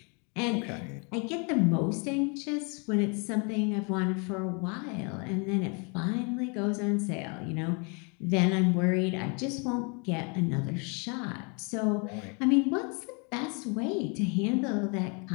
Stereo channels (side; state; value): right; quieter; 34.3 dB